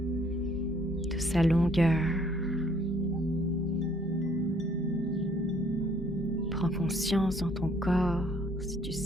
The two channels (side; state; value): both; normal; correlation 0.62